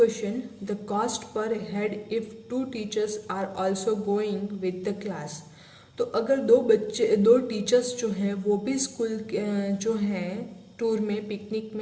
the cost per head if 2 teachers are also going with the class. तो अगर दो टीचर्स जो हैं वो भी स्कूल जो हैं टूर में, पिकनिक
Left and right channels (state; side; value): identical; both; correlation 1.00